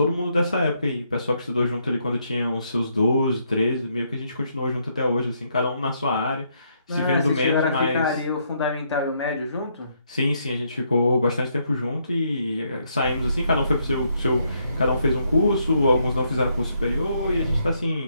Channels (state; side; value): inverted; both; correlation -0.74